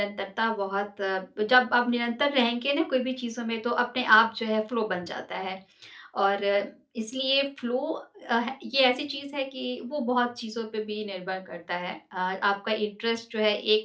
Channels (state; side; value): identical; both; correlation 1.00